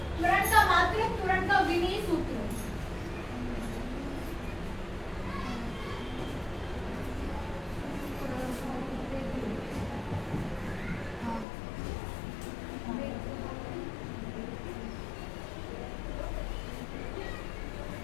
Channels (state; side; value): drops out; right; at 11.5 s